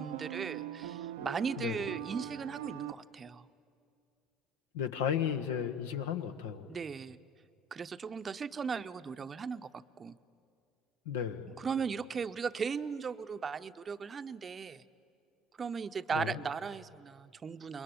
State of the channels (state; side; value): normal; both; correlation 0.51